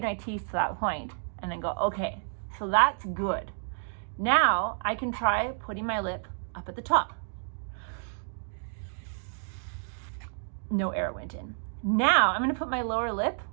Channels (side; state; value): left; silent; digital silence